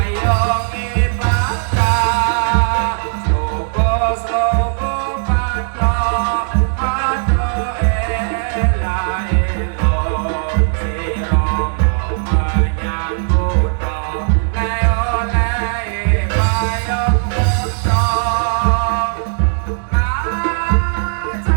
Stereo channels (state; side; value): silent; left; 68 dB below the other